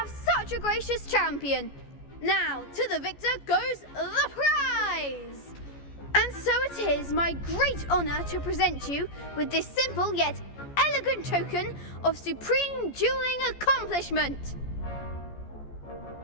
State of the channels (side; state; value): right; late; 14 ms